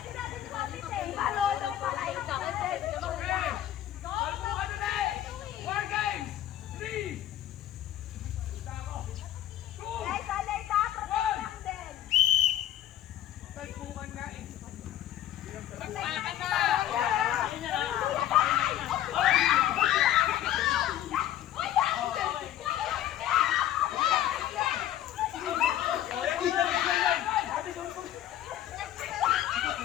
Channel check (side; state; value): right; quieter; 12.2 dB